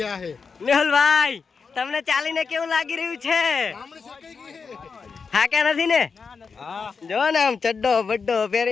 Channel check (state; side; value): quieter; right; 5.3 dB